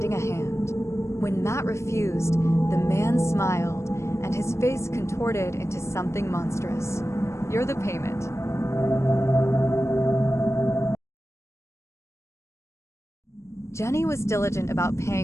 a hand. When Matt refused, the man smiled, and his face contorted into something monstrous. "You're the payment." Jenny was diligent about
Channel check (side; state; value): right; late; 0.13 ms